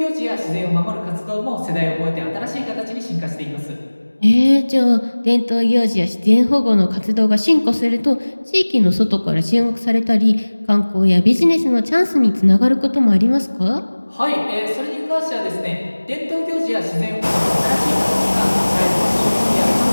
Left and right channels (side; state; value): both; inverted; correlation -1.00